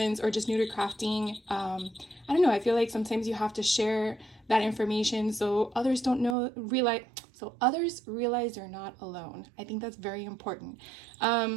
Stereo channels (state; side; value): drops out; left; at 6.4 s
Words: or just new to crafting, I don't know, I feel like sometimes you have to share that information so others realize they're not alone. I think that's very important.